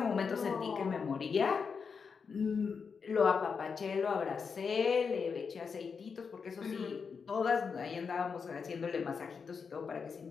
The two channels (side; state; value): right; quieter; 5.7 dB